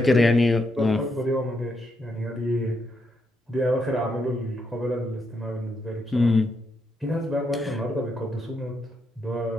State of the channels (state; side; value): normal; both; correlation 0.80